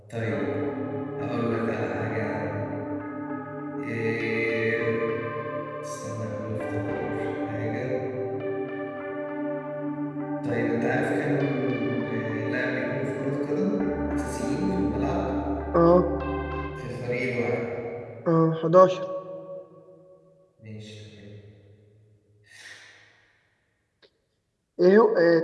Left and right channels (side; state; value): both; identical; correlation 1.00